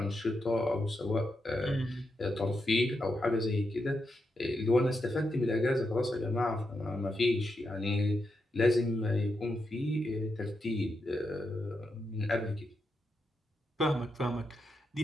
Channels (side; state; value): both; normal; correlation 0.85